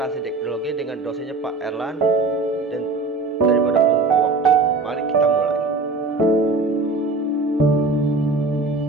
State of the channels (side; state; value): left; quieter; 3.5 dB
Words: teknologi dengan dosennya Pak Erlan, dan daripada membuang waktu, mari kita mulai.